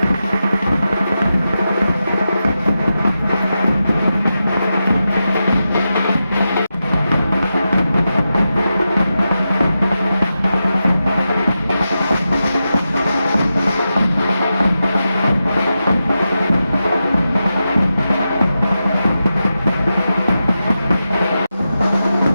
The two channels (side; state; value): both; inverted; correlation -0.90